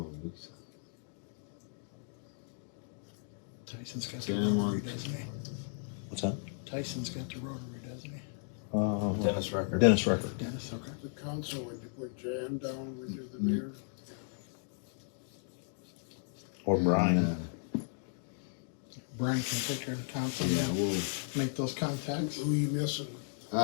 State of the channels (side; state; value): right; silent; digital silence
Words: Lisa. Tyson's got the Dan rotary, one. doesn't he? What's that? Tyson's got the rotary, doesn't he? Dennis Rucker. Dennis Rucker. Dennis, okay. The council, would you put Jan down with you, the mayor? Or Brian. Brian can take care of the council, Yeah, we'll, make those contacts. Who you missing?